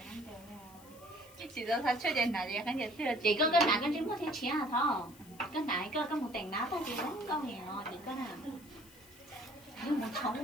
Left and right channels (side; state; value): left; noise; hiss, 22 dB below the sound